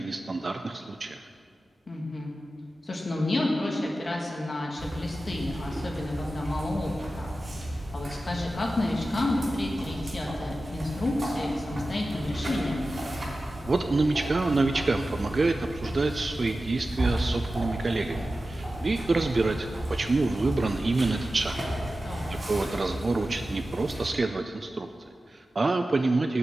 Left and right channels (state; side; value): normal; both; correlation 0.94